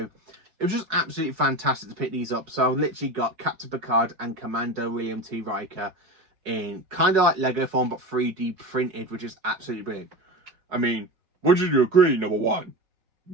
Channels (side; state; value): left; late; 4.7 ms